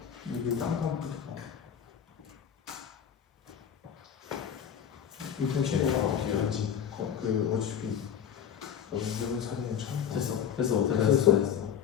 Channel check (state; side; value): quieter; right; 8.5 dB